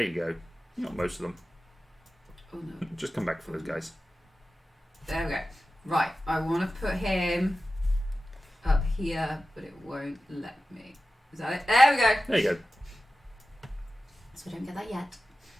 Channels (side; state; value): both; normal; correlation 0.94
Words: you go. You got most of them. Oh no. Just come back for those guys. There we go. Right, I want to put him up here, but it won't let me. Is that it? There we go. There you go. So I don't get that yet.